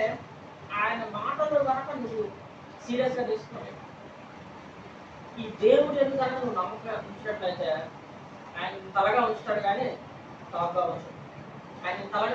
ఆయన మాటలు కనుక నువ్వు సీరియస్గా తీసుకున్నావు. ఈ దేవుడు ఎందుకు కనుక నువ్వు నమ్మకం ఉంచినట్లయితే ఆయన తలగా ఉంచుతాడు, కానీ టాప్గా ఉంచుతాడు. ఆయన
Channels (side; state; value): both; identical; correlation 1.00